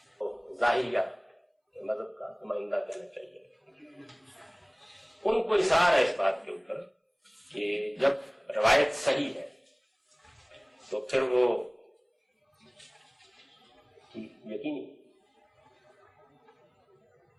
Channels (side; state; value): both; identical; correlation 1.00